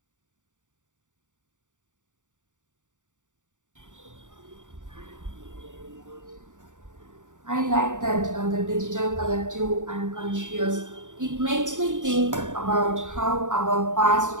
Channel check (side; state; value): left; late; 0.86 ms